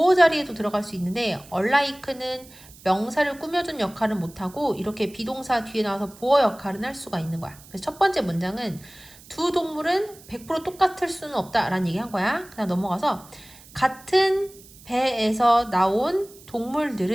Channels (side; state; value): right; noise; hiss, 22 dB below the sound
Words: 자리에도 들어갈 수 있는데 unlike는 명사를 꾸며준 역할은 못하고 이렇게 비동사 뒤에 나와서 보어 역할은 할 수가 있는 거야. 그래서 첫 번째 문장은 두 동물은 100% 똑같을 수는 없다라는 얘기 한 거야. 그다음 넘어가서 같은 배에서 나온